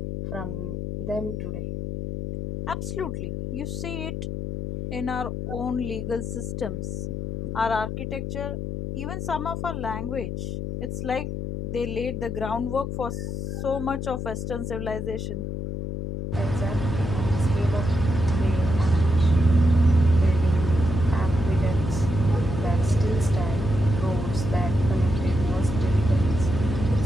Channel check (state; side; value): noise; left; hum, 4 dB below the sound